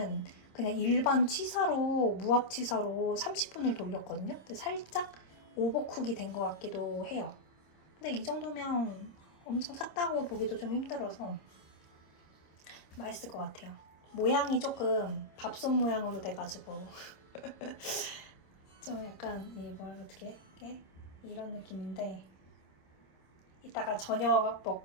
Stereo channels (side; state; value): right; late; 26 ms